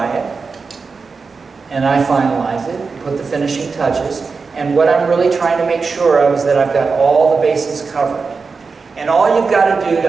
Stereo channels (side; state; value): left; quieter; 4.7 dB